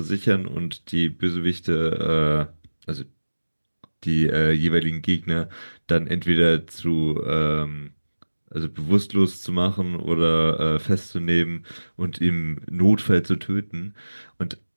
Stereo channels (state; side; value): inverted; both; correlation -1.00